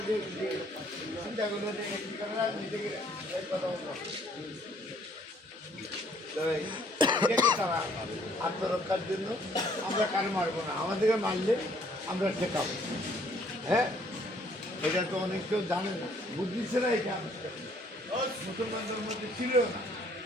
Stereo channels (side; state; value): both; normal; correlation 0.62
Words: যে চিন্তা করলো যে নিজেকে কথা বলবো তারা আত্মরক্ষার জন্য আমরা কারো মারবো না, আমাদেরকে মারলে আমরা ঠেকাবো। হ্যাঁ, এটা তো অনেক কেউ জানে না, বুঝছে না। এটা মুসলমানদের মধ্যে ছিল না।